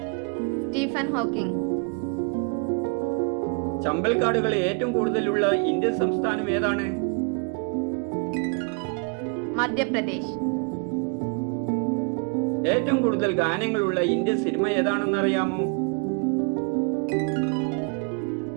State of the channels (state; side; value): quieter; left; 35.0 dB